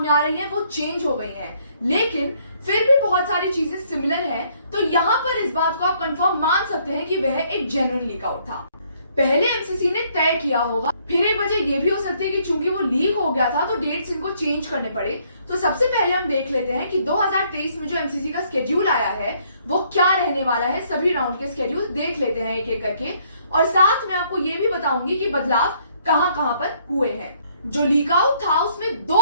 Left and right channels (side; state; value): both; inverted; correlation -0.67